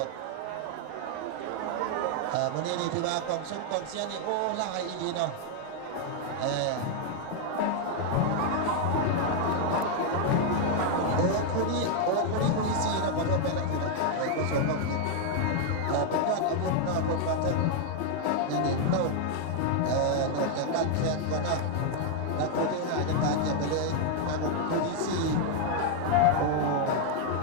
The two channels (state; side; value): different; both; correlation 0.00